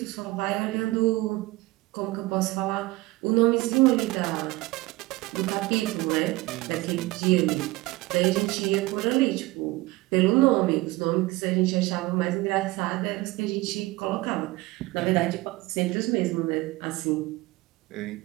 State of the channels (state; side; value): quieter; left; 20.2 dB